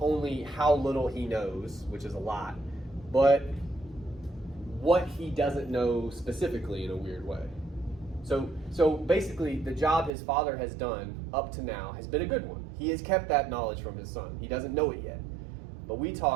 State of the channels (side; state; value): left; drops out; at 10.1 s